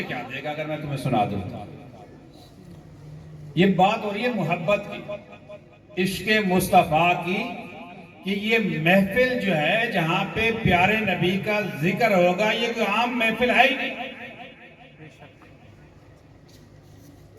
کیا دے گا اگر میں تمہیں سنا دوں؟ یہ بات ہو رہی ہے محبت کی، عشق مصطفیٰ کی، کہ یہ محفل جو ہے جہاں پہ پیارے نبی کا ذکر ہوگا، یہ کوئی عام محفل ہے ہی نہیں۔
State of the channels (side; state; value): both; identical; correlation 1.00